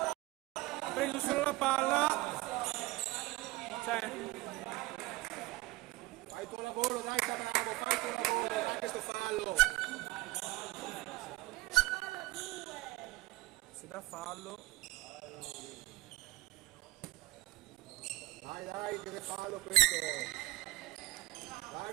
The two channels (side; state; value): left; quieter; 19.6 dB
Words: Ha preso solo la palla. Cioè, Fai il tuo lavoro, dai Bravo, fai il tuo lavoro, fai questo fallo. si dà fallo. Dai, che fallo questo. Dai,